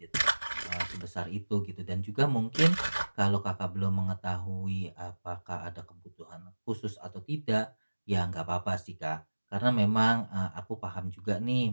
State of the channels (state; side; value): inverted; both; correlation -1.00